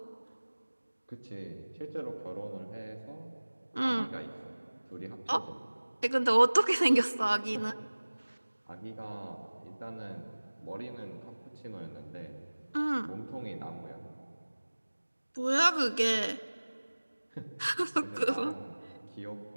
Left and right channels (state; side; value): inverted; both; correlation -1.00